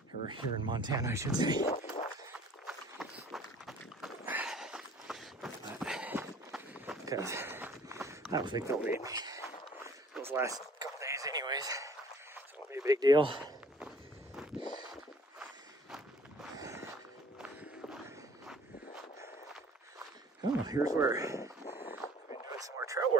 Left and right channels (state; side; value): normal; both; correlation 0.53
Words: Or here in Montana, I should say. Because I don't think they'll need me those last couple days anyways. So it won't be a big deal. Oh, here's where I've been doing some more trail